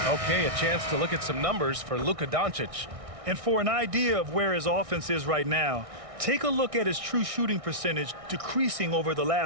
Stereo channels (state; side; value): late; left; 1.6 ms